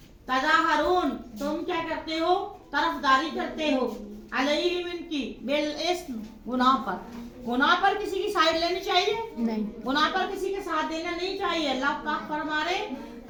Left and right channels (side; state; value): both; identical; correlation 1.00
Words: तज़ाहरून तुम क्या करते हो? तरफदारी करते हो। अलैहिम इनकी बिल इस्म गुनाह पर। गुनाह पर किसी की साइड लेनी चाहिए नहीं, गुनाह पर किसी के साथ देना नहीं चाहिए। अल्लाह पाक फरमा रहे